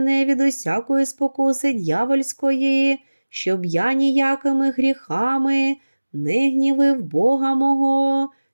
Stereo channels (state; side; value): inverted; both; correlation -1.00